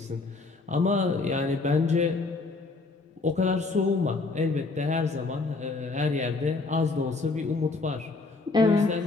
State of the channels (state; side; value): quieter; right; 3.7 dB